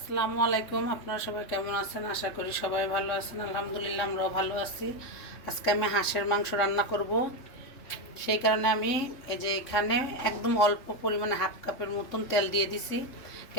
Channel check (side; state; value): right; late; 3.7 ms